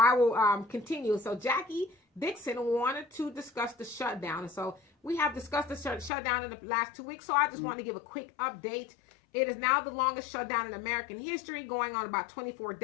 will continue. So, Jackie Dixon wanted to discuss the shutdown. And so, we have discussed the shutdown in the last 2 weeks, so I just want to give a quick update. It is now the longest shutdown in American history, going on about 24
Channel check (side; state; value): right; drops out; at 6.1 s